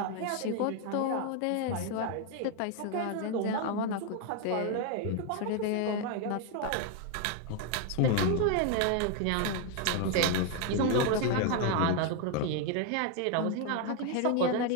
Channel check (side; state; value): both; different; correlation 0.01